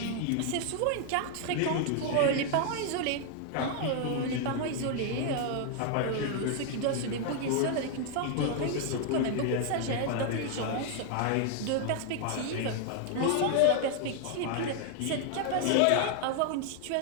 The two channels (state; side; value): different; both; correlation 0.00